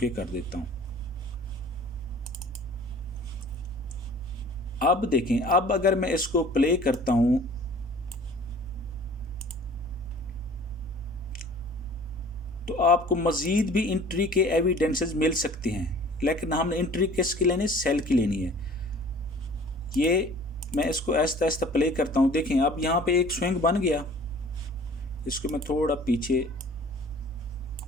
कर देता हूँ। अब देखें, अब अगर मैं इसको प्ले करता हूँ तो आपको मज़ीद भी एंट्री के एविडेंसेस मिल सकते हैं, लेकिन हमने एंट्री किसकी लेनी है? सेल की लेनी है। ये मैं इसको आहिस्ता आहिस्ता प्ले करता हूँ। देखें अब यहाँ पे एक स्विंग बन गया, इसको मैं थोड़ा पीछे,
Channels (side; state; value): both; normal; correlation 0.48